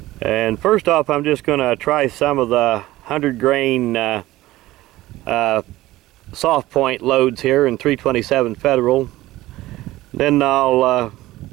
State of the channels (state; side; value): quieter; left; 16.9 dB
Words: And first off, I'm just going to try some of the 100 grain soft point loads here in 327 Federal. Then I'll